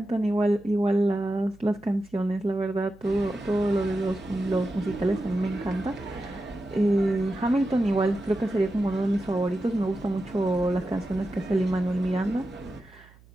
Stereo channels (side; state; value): right; noise; hum, 26 dB below the sound